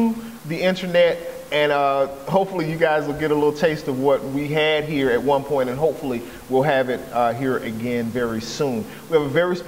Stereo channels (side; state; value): both; identical; correlation 1.00